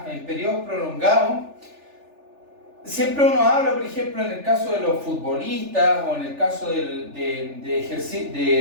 en periodos prolongados, siempre uno habla, por ejemplo, en el caso de los futbolistas o en el caso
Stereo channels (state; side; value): late; left; 3.4 ms